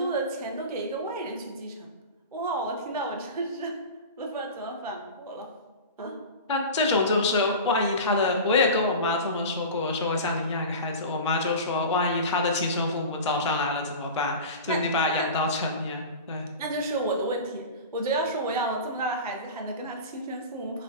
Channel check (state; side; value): inverted; both; correlation -0.31